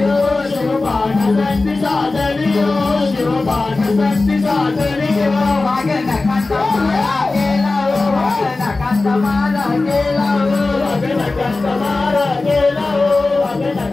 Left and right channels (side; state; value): right; quieter; 3.4 dB